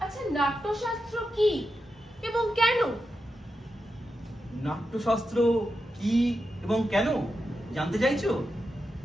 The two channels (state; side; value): normal; both; correlation 0.88